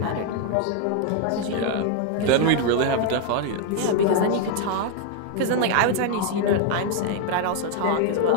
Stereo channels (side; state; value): both; different; correlation 0.01